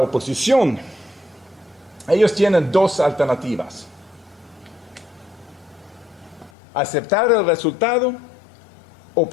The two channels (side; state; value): right; drops out; at 6.5 s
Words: Ellos tienen dos alternativas. Aceptar el resultado o